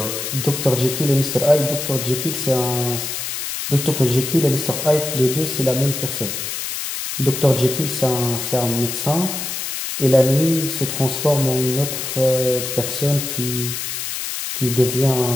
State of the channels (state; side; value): noise; left; hiss, 5 dB below the sound